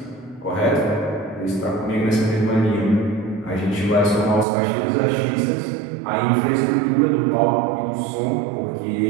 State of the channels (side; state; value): left; drops out; at 4.5 s